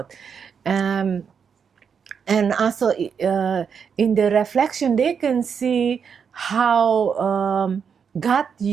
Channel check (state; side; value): quieter; left; 6.7 dB